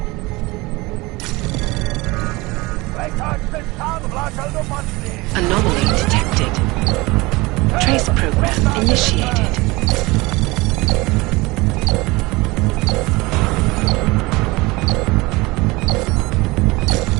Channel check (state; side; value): quieter; left; 22.6 dB